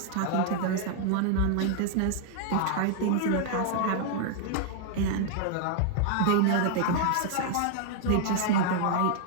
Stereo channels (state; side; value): different; both; correlation 0.00